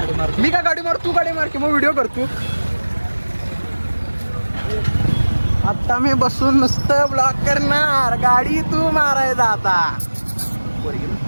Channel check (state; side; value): inverted; both; correlation -1.00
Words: मी का गाडी मार, तू गाडी मार की मग व्हिडिओ करतो. आता मी बसून नुसतं ब्लॉक करणार, गाडी तू मारायचा. आता